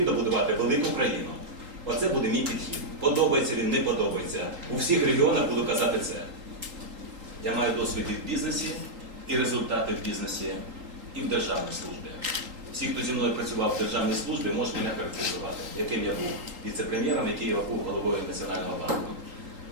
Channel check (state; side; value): late; left; 3.8 ms